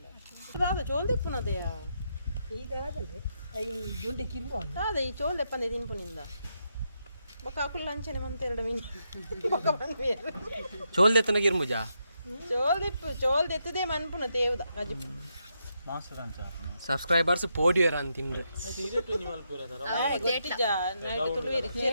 ಚೋಲ್ದೆಪ್ಪುನದೆಯ ಇದಾಗಲೇ ದೊಡ್ಡ ಕಿರ್ಬ ಅದೇ ಈ ಚೋಲ್ದೆಪ್ಪನೆ ತಿನ್ಪುನಿಂದ ಬೊಕ್ಕ ಅಕುಲ್ ಅಂಚನೆ ಮಂತೆರಡು ಮೀನು ಬೊಕ್ಕ ಬಂದ್ಮೇಲೆ ಚೋಲ್ದೆತ್ತನ ಗಿರ್ಮುಜಾ ಚೋಲ್ದೆತ್ತದೇ ಮನ್ಪುನ ತೇವ್ದ ಗಜಿಪು ಸಬ್ಸ್ಕ್ರೈಬರ್ಸ್ ಪೋಡಿಯರ್ ಅಂತಿಂದ್ರೆ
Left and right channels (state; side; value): inverted; both; correlation -0.81